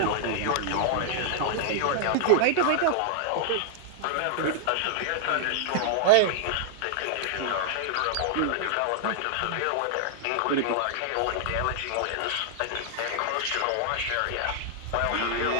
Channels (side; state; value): both; different; correlation -0.01